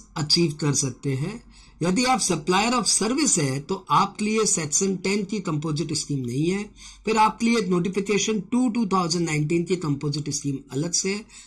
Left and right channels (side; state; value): both; identical; correlation 1.00